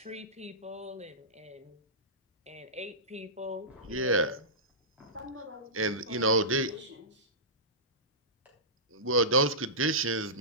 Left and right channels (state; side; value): normal; both; correlation -0.19